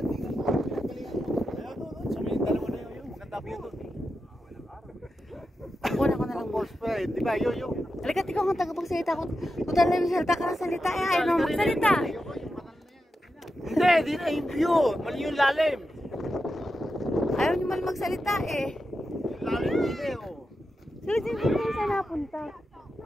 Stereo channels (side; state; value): both; normal; correlation 0.89